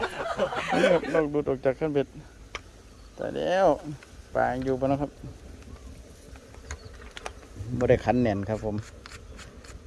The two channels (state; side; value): identical; both; correlation 1.00